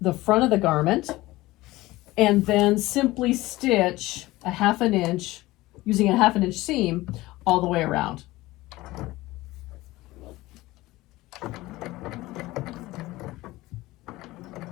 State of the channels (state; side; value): quieter; right; 18.7 dB